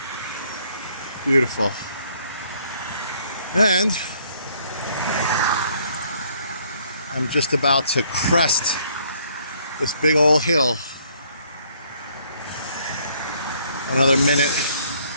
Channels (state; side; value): inverted; both; correlation -0.64